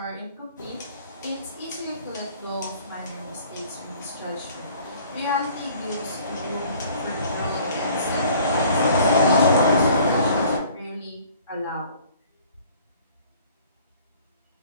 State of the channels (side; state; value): both; inverted; correlation -0.53